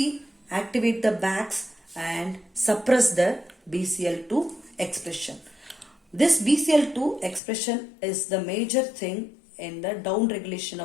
activate the Bax and suppress the BCL2 expression. This BCL2 expression is the major thing in the down regulation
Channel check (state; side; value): drops out; right; at 7.4 s